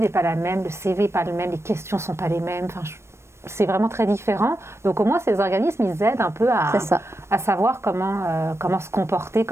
n'est pas la même, le CV n'est pas le même, les questions ne sont pas les mêmes. Enfin, c'est vraiment très différent. Donc au moins ces organismes, ils aident un peu à savoir comment se comporter,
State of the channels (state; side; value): late; left; 0.13 ms